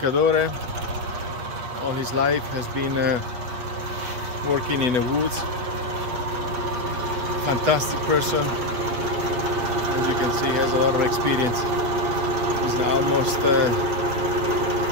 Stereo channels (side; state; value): left; late; 8.3 ms